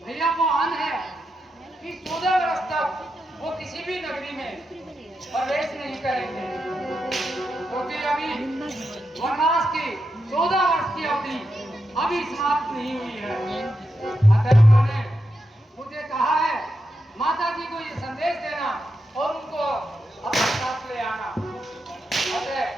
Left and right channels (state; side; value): normal; both; correlation 0.86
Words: भैया को आन है कि 14 वर्ष तक वो किसी भी नगरी में प्रवेश नहीं करेंगे, क्योंकि अभी वनवास की 14 वर्ष की अवधि अभी समाप्त नहीं हुई है। अतः उन्होंने मुझे कहा है माता जी को ये संदेश देना और उनको अपने साथ ले आना। अतः